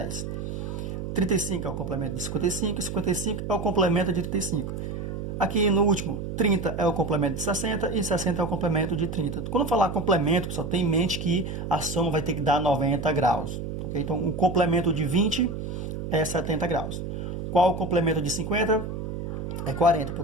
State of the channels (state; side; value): noise; right; hum, 6 dB below the sound